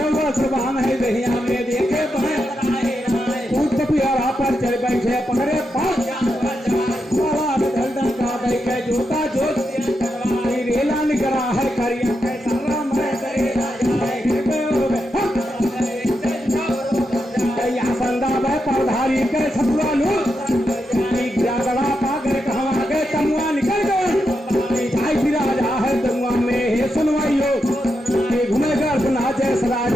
सुबहान है दहिया में देखे पियारा पर चढ़ बैठे पकड़े पास जोता जोत के सतुआ लो गड़ा पाकर कहवा गए तमुआ निकल गए भाई फिरा जा है तमुआ में हे सुनवाइयो घूमे घर सुना जय सराज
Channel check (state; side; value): normal; both; correlation 0.85